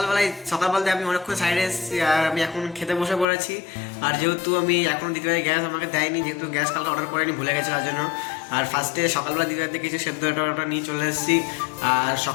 বলতে আমি অনেকক্ষণ সাইডে এসেছি আর আমি এখন খেতে বসে পড়েছি। আর যেহেতু আমি এখন দিদিভাই গ্যাস আমাকে দেয়নি, যেহেতু গ্যাস কালকে অর্ডার করেনি, ভুলে গেছে তার জন্য। আর ফার্স্টে সকালবেলা দিদিভাইতে কিছু সেদ্ধ ওটা নিয়ে চলে এসেছি। আর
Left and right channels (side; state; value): right; drops out; at 3.2 s